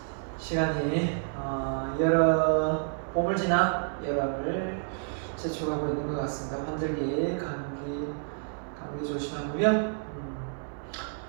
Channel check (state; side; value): silent; left; digital silence